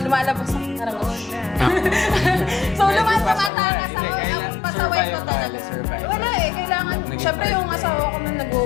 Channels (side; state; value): right; drops out; at 3.5 s